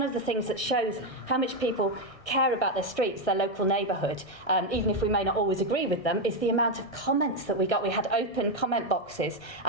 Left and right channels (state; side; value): late; right; 1.1 ms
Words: of the things that shows how much people care about their streets, their local neighbourhood, even if we may not always agree with them, is the amount of comments that we got. We had open comment boxes,